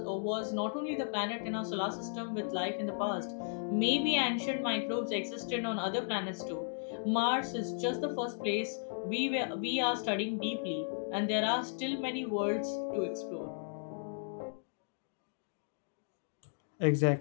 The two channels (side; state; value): right; silent; digital silence